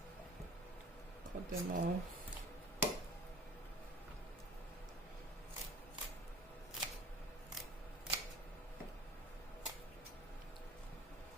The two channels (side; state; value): both; normal; correlation 0.43